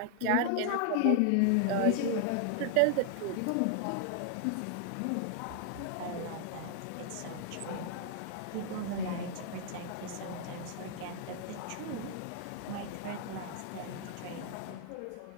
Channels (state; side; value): different; both; correlation 0.00